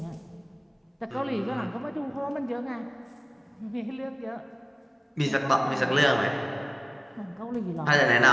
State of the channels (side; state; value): both; identical; correlation 1.00